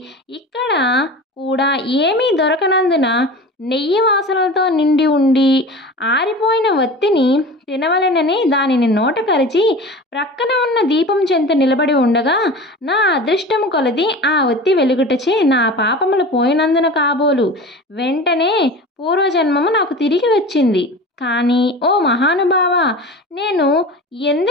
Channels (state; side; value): normal; both; correlation 0.35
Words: ఇక్కడ కూడా ఏమీ దొరకనందున నెయ్యి వాసనలతో నిండి ఉండి ఆరిపోయిన ఒత్తిని తినవలెనని దానిని నోట కరిచి ప్రక్కన ఉన్న దీపం చెంత నిలబడి ఉండగా నా అదృష్టము కొలది ఆ ఒత్తి వెలుగుటచే నా పాపములు పోయినందున కాబోలు వెంటనే పూర్వజన్మము నాకు తిరిగి వచ్చింది. కానీ ఓ మహానుభావ, నేను